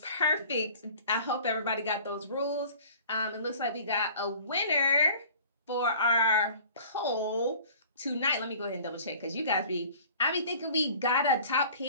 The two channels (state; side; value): inverted; both; correlation -0.47